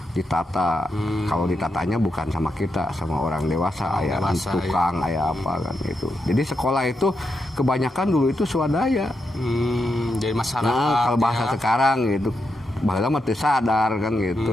ditata. Kalau ditatanya bukan sama kita, sama orang dewasa, aya tukang, aya apa kan itu. Jadi sekolah itu kebanyakan dulu itu swadaya. Jadi masyarakat. Nah, kalau bahasa ya. sekarang gitu, baheula mah teu sadar kan gitu.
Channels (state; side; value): normal; both; correlation 0.85